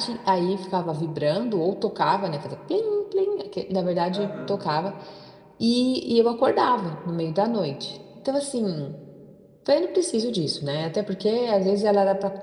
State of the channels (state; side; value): identical; both; correlation 1.00